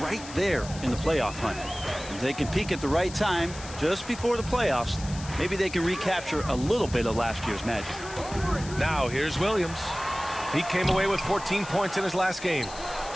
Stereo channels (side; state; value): left; noise; hiss, 14 dB below the sound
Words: right there in the playoff hunt. If they can peak at the right time, just before the playoffs, Maybe they can recapture a little bit of last year's magic. Now here's Williams. He came away with 14 points in his last game.